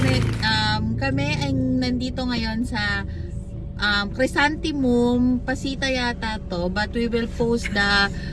kami ay nandito ngayon sa Chrysanthemum, Pasita yata to, but we will post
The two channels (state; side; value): identical; both; correlation 1.00